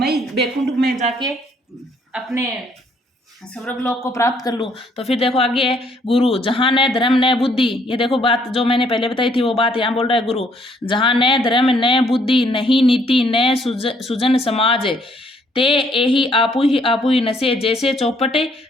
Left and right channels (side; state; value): both; normal; correlation 0.66